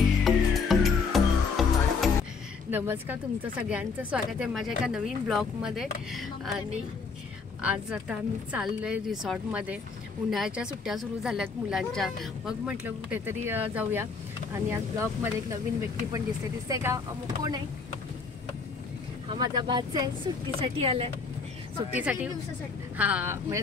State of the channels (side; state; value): right; quieter; 4.9 dB